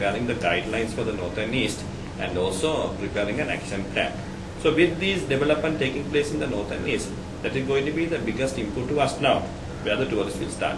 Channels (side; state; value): both; identical; correlation 1.00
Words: the guidelines for the north and east, and also preparing an action plan. So with these development taking place in the north and east, that is going to be the biggest input to us now, where the tourists will start